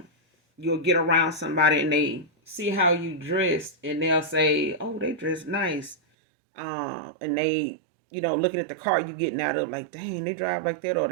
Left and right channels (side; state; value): left; drops out; at 6.0 s